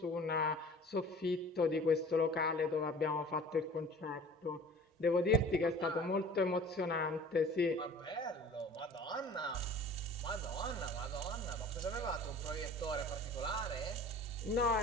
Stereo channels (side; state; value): both; normal; correlation 0.44